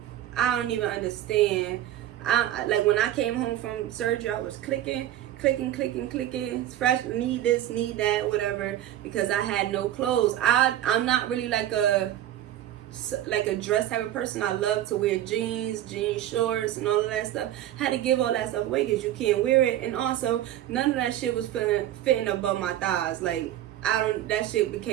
I don't even understand. I like, when I came home from surgery, I was clicking, fresh, need this, need that, whatever, because I had no clothes. I'm not really like a dress type of person. I love to wear jeans shorts, and all of that stuff. Had to give all that stuff away because you can't wear it, and also none of that shit was fitting above my thighs. Like, that shit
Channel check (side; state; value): left; quieter; 12.5 dB